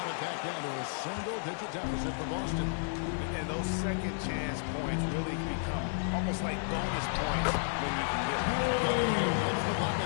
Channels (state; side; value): silent; right; digital silence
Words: it back down to a single-digit deficit for Boston. And those second chance points really become almost like bonus points when you can get them. Cunningham gets the